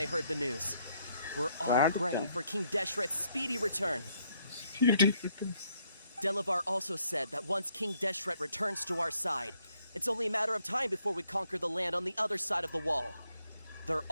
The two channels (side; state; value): both; inverted; correlation -0.72